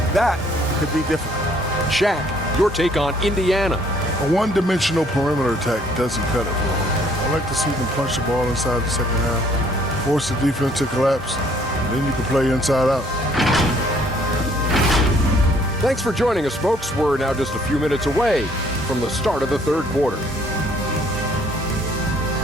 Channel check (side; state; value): both; normal; correlation 0.62